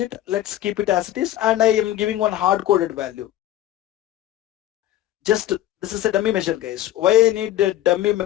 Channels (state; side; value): quieter; right; 13.5 dB